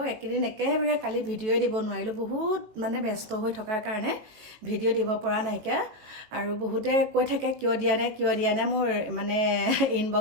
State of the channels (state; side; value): late; left; 19 ms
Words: একেদিন একেবাৰে কালি ভিডিঅ'ই দিব নোৱাৰিলোঁ বহুত মানে ব্যস্ত হৈ থকাৰ কাৰণে ভিডিঅ' দিব পৰা নাইকিয়া আৰু বহুতে কৈ থাকে কিয় দিয়া নাই মোৰ মানে